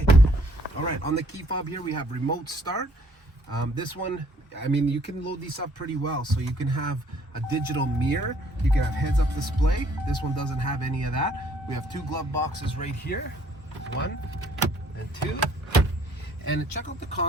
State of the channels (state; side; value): normal; both; correlation 0.62